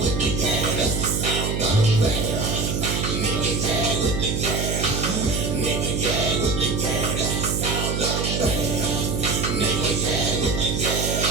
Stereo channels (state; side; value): noise; right; hum, 1 dB below the sound